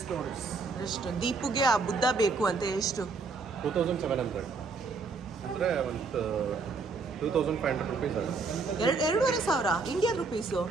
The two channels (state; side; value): quieter; left; 4.2 dB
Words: dollars. ಎಷ್ಟು ದೀಪುಗೆ ಆ ಬುದ್ಧ ಬೇಕು ಅಂತ? ಎಷ್ಟು? 2,700 ಅಂದರೆ ಒಂದು 2,500 rupees ಆಗುತ್ತೆ. 2,500 ಇಂಡಿಯನ್ ರುಪೀಸು.